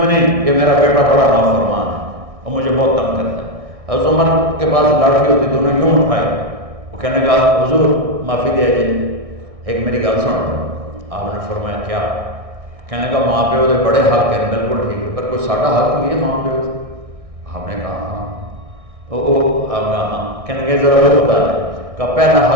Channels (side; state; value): left; late; 1.6 ms